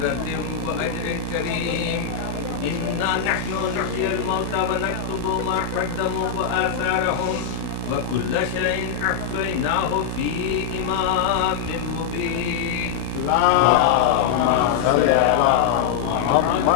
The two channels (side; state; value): right; quieter; 7.5 dB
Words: وأجر كريم. إنا نحن نحيي الموتى ونكتب ما قدموا وآثارهم وكل شيء أحصيناه في إمام مبين.